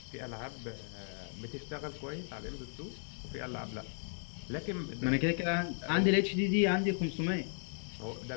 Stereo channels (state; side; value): silent; right; 54 dB below the other